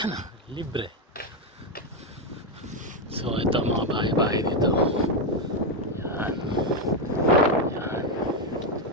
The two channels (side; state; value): both; normal; correlation 0.06